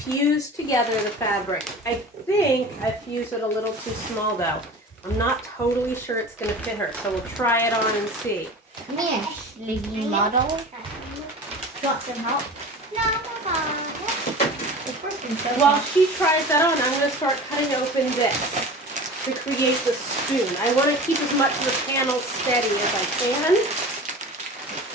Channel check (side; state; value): both; normal; correlation 0.36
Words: together the fabric. I think I fused it a little too small though. I'm not totally sure it's going to fit her, so we'll try it on and see. Come here, sleepy model. You want some help? No, it's working so While she tries that on, I'm going to start cutting open this to create the spoon. I want to keep as much of the panel steady as I can.